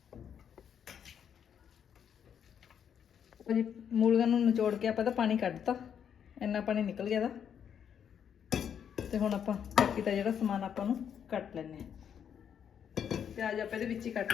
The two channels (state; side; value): quieter; right; 8.3 dB